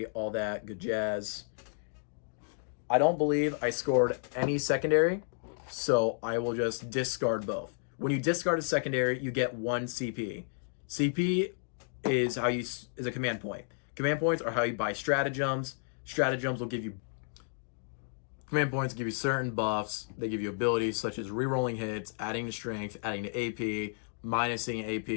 all that good jazz. I don't believe I scored any secondary, so I will just discard both. When you discard a secondary, you get 1 CP. CP is a command point. Command points are how you buy stratagems. Stratagems will give you command points, give you certain buffs. They give you abilities such as rerolling hits, adding to strength, adding to AP, minusing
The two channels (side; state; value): right; silent; digital silence